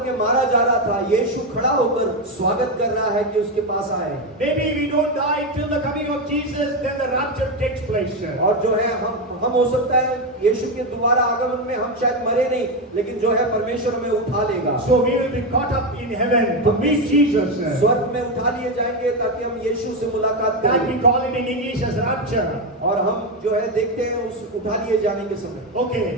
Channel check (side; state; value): both; normal; correlation 0.10